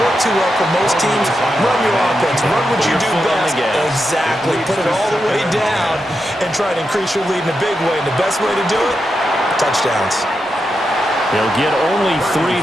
work too well for most teams. Run your offense. Run what you do best. Exactly. Put it all the way down and try to increase your lead in a big way. And the best way to do it, touchdowns. They'll get only 3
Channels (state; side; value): normal; both; correlation 0.87